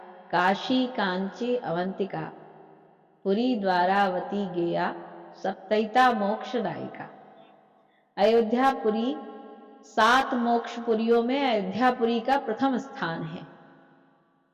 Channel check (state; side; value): identical; both; correlation 1.00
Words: काशी, कांची, अवंतिका, पुरी, द्वारावती, गेया, सप्तैता मोक्षदायिका। अयोध्यापुरी 7 मोक्षपुरियों में अयोध्यापुरी का प्रथम स्थान है।